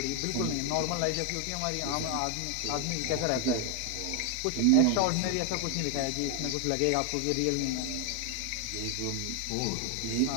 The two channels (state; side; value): different; both; correlation 0.01